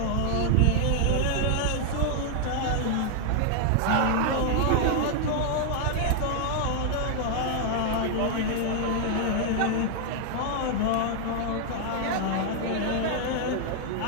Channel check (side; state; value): both; different; correlation 0.00